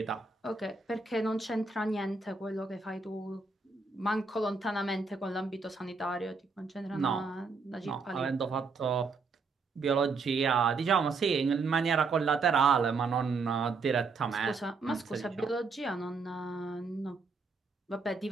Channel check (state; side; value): quieter; left; 4.4 dB